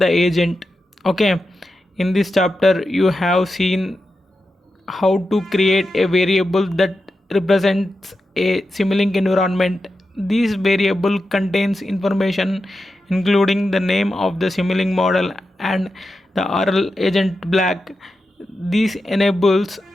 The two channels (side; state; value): both; normal; correlation 0.90